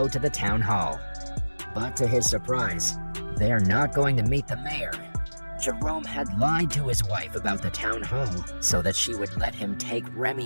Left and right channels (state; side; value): inverted; both; correlation -1.00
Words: to the town hall. But to his surprise, they are not going to meet the mayor. Jerome had lied to his wife about the town hall so that she would let him take